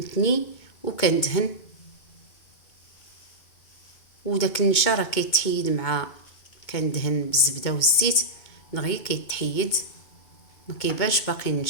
وكندهن. وداك النشا راه كيتحيد مع كندهن بالزبده والزيت دغيا كيتحيد، ما كيبانش باقي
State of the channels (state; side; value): late; right; 2.2 ms